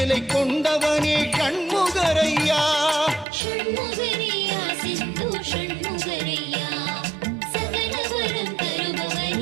கொண்டவனே ஷண்முகரையா ஷண்முகரையா செந்தூர் ஷண்முகரையா சகலவரம்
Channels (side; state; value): left; drops out; at 3.2 s